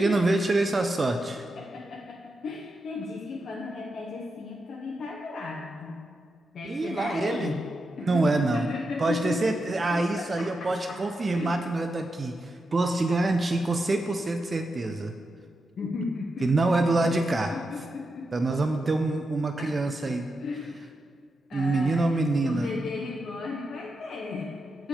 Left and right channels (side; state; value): both; normal; correlation 0.87